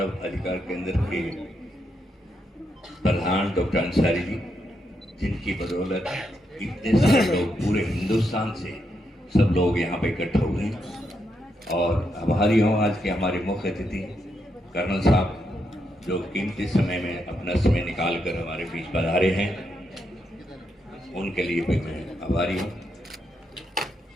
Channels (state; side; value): normal; both; correlation 0.81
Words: अधिकार केंद्र के प्रधान डॉक्टर अंसारी जी, जिनकी बदौलत इतने सारे लोग पूरे हिंदुस्तान से सब लोग यहाँ पे इकट्ठा हुए हैं। और आभारी हूँ आज के हमारे मुख्य अतिथि कर्नल साहब जो कीमती समय में अपना समय निकाल कर हमारे बीच पधारे हैं, उनके लिए भी मैं आभारी हूँ।